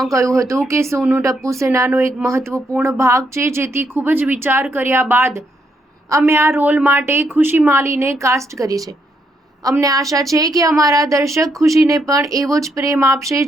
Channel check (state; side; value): normal; both; correlation 0.76